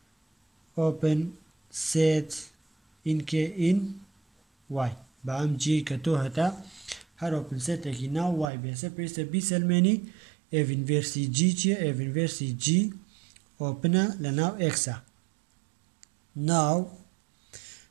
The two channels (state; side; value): drops out; left; at 8.5 s